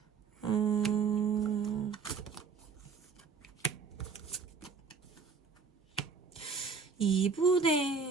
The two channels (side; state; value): left; quieter; 5.4 dB